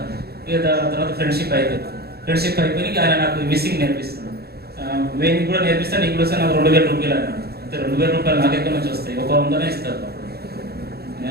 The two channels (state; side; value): late; left; 0.46 ms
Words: తర్వాత ఫ్రెండ్షిప్ అయిపోయి ఆయన నాకు మిస్సింగ్ నేర్పిస్తున్నాడు. వేణి కూడా నేర్పిస్తాను, నీకు కూడా నాకు 2000 రూపాయలు అన్నాడు. అంతే 2000 రూపాయలు నాకు ఎక్కడి నుంచి వస్తాయి, ఒక 100నే ఇస్తారు.